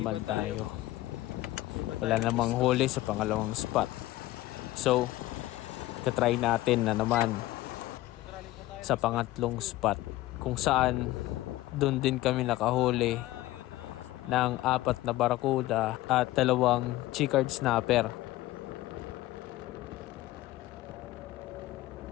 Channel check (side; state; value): right; quieter; 16.8 dB